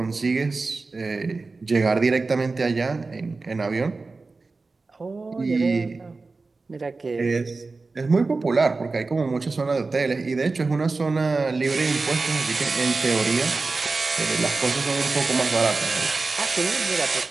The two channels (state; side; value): quieter; left; 3.8 dB